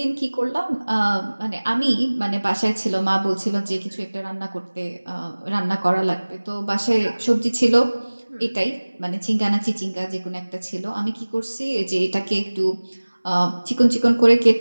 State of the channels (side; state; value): both; inverted; correlation -1.00